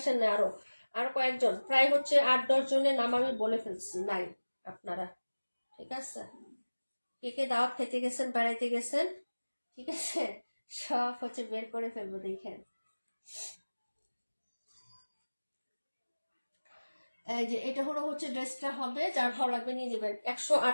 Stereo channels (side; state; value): both; inverted; correlation -1.00